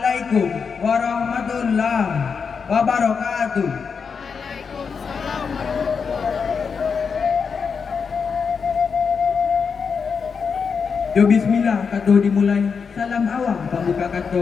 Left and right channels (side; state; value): right; quieter; 5.8 dB